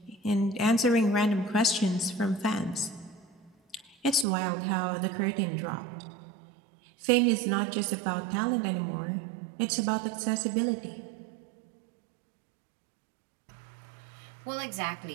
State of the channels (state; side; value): drops out; left; at 4.2 s